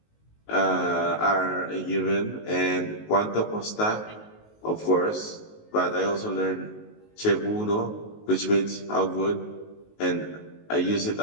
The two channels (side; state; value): right; late; 19 ms